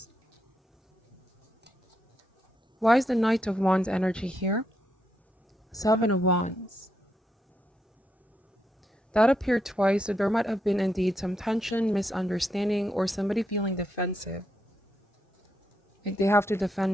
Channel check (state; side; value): normal; both; correlation 0.80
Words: Why is the Knight of Wands energy here? Seven of Wands. That appeared twice, so there might have been indeed some tension, misunderstanding, or somebody feeling defensive. Like they have to